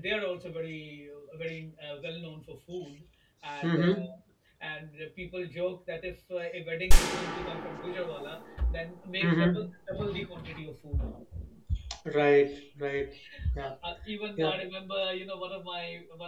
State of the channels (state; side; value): identical; both; correlation 1.00